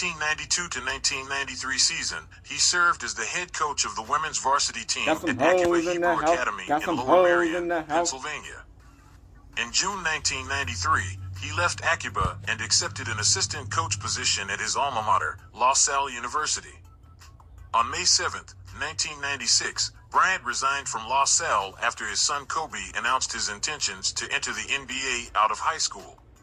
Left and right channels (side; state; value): both; identical; correlation 1.00